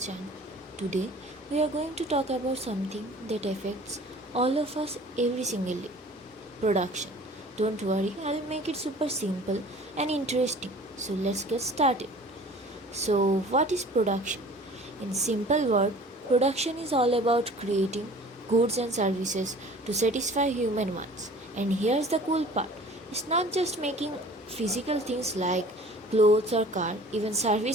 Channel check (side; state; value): both; normal; correlation 0.47